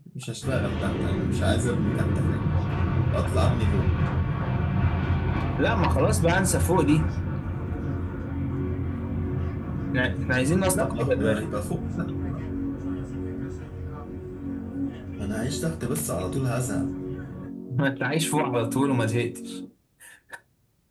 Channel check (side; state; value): both; identical; correlation 1.00